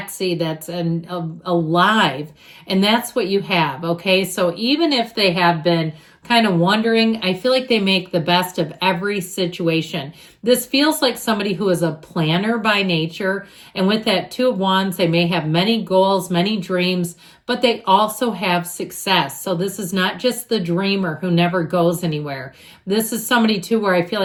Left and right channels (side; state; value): both; identical; correlation 1.00